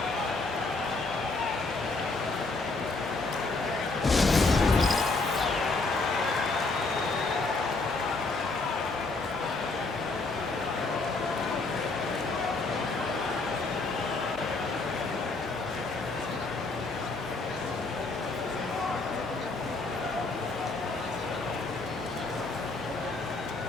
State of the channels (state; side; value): quieter; right; 3.5 dB